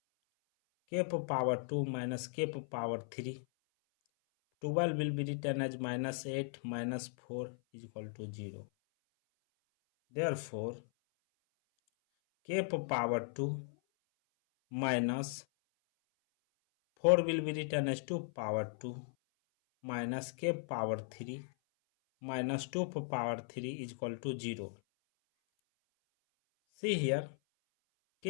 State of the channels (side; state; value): right; silent; 53 dB below the other